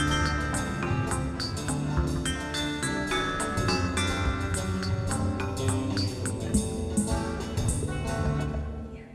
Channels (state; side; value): identical; both; correlation 1.00